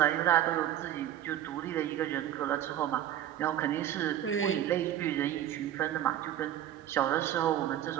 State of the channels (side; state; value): left; quieter; 11.7 dB